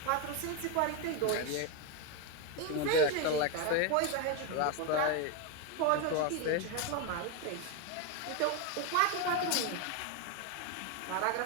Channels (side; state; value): both; different; correlation 0.02